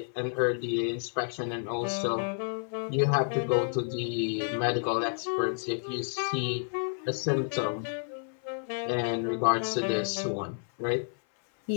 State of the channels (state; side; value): silent; right; 58 dB below the other